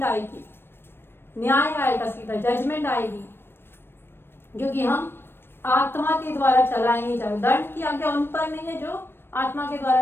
आएगी, न्याय आएगा, सीधा जजमेंट आएगी, क्योंकि हम आत्मा के द्वारा चलाए नहीं जाते। दंड की आज्ञा उन पर नहीं है जो आत्मा के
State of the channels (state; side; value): late; right; 0.11 ms